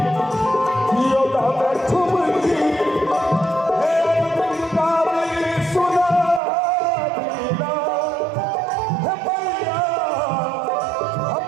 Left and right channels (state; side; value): drops out; left; at 6.4 s